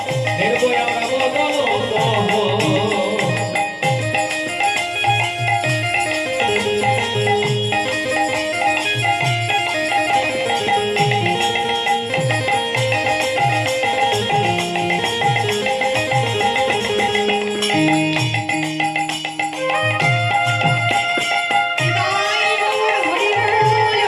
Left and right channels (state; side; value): identical; both; correlation 1.00